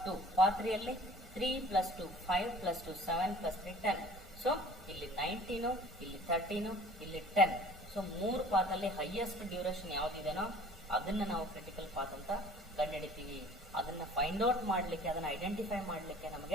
2. ಪಾತ್ 3 ಅಲ್ಲಿ 3 + 2 5 + 2 7 + 3 10. ಸೊ ಇಲ್ಲಿ 19, ಇಲ್ಲಿ 13, ಇಲ್ಲಿ 10. ಸೊ 3 ಪಾತ್ ಅಲ್ಲಿ ಹೈಯೆಸ್ಟ್ ಡ್ಯೂರೇಷನ್ ಯಾವ್ದಿದೆನೋ ಅದನ್ನ ನಾವು ಕ್ರಿಟಿಕಲ್ ಪಾತ್ ಅಂತ ಕಂಡುಹಿಡಿತೀವಿ. ಅದನ್ನ ಫೈಂಡ್ ಔಟ್ ಮಾಡ್ಲಿಕ್ಕೆ, ಅದನ್ನ ಐಡೆಂಟಿಫೈ ಮಾಡ್ಲಿಕ್ಕೆ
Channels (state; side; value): normal; both; correlation 0.48